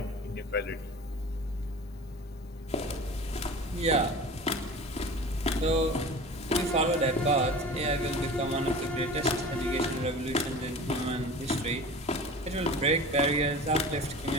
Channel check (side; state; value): both; normal; correlation 0.37